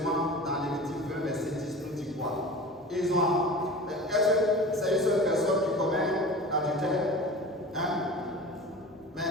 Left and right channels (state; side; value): normal; both; correlation 0.36